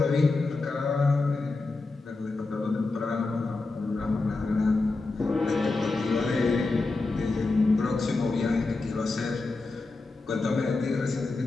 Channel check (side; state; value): right; quieter; 3.5 dB